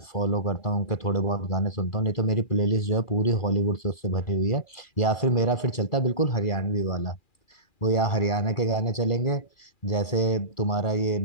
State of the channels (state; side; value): late; right; 2.4 ms